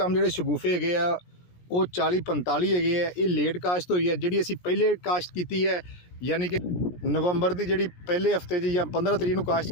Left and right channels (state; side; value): late; right; 17 ms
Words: ਜਿਹੜੇ ਸ਼ਗੂਫੇ ਹੈਗੇ ਆ ਉਹ 40-45 ਹੈਗੇ ਆ। ਇਹ ਲੇਟ ਕਾਸ਼ਤ ਹੋਈ ਹੈ। ਜਿਹੜੀ ਅਸੀਂ ਪਹਿਲੇ ਕਾਸ਼ਤ ਕੀਤੀ ਹੈ, ਯਾਨੀ ਕਿ ਨਵੰਬਰ ਦੀ ਜਿਹੜੀ ਪਹਿਲੇ ਹਫਤੇ 'ਚ ਜਾਂ 15 ਤਰੀਕ ਨੂੰ ਕਾਸ਼ਤ